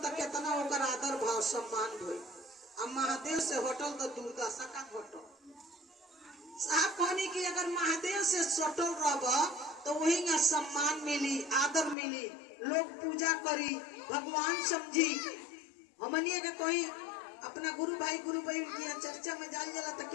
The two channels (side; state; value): right; drops out; at 12.0 s